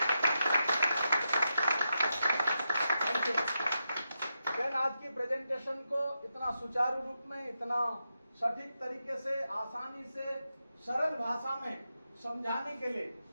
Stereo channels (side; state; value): both; inverted; correlation -0.87